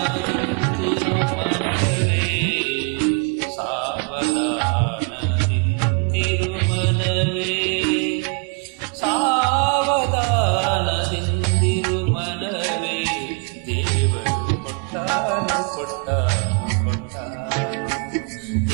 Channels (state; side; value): quieter; left; 35.7 dB